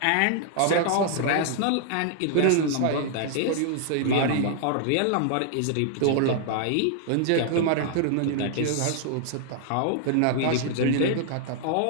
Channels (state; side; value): different; both; correlation 0.00